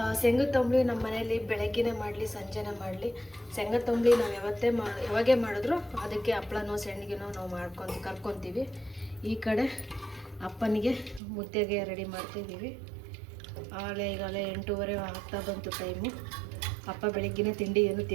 ಶೇಂಗದ ತಂಬಳಿ ನಮ್ಮ ಮನೇಲಿ ಬೆಳಗ್ಗೆನೇ ಮಾಡಲಿ ಸಂಜೆನೇ ಮಾಡಲಿ, ಶೇಂಗದ ತಂಬಳಿ ನಾವು ಯಾವಾಗೇ ಮಾಡಿದ್ರು ಅದಕ್ಕೆ ಹಪ್ಳನೋ ಸೆಣ್ಣಿಗೆನೋ ನಾವು ಕರ್ಕೊತೀವಿ. ಈ ಕಡೆ ಅಪ್ಪನಿಗೆ ಮುದ್ದೆಗೆ ರೆಡಿ ಮಾಡ್ತಿದ್ದೀವಿ. ಈಗಾಗಲೇ 8:30 ಆಗ್ತಾ ಬಂತು ಟೈಮು. ಅಪ್ಪ ಬೆಳಗ್ಗೆನೇ ತಿಂಡಿ ಏನು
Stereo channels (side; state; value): left; drops out; at 11.2 s